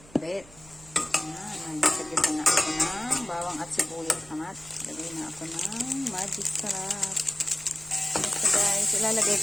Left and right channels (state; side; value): noise; right; hum, 23 dB below the sound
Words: Ayan, nagsagitan na ako ng bawang at sibuyas naman. Lagay na ako ng magic sarap. So guys, ilalagay